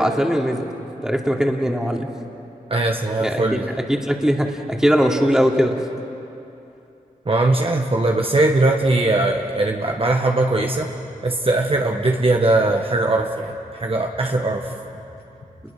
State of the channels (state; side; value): normal; both; correlation 0.78